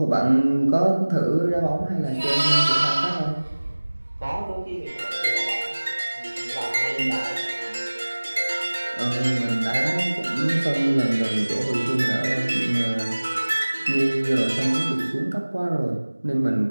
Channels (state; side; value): inverted; both; correlation -1.00